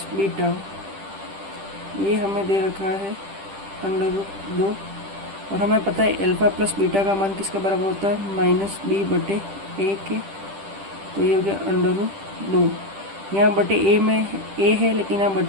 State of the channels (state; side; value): late; left; 10 ms